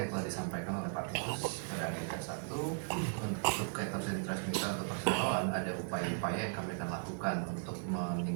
telah disampaikan oleh Pak Titus pada agenda 1 untuk Caters and Transmitter atau perseroan, ada upaya-upaya yang kami akan lakukan untuk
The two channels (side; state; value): left; silent; digital silence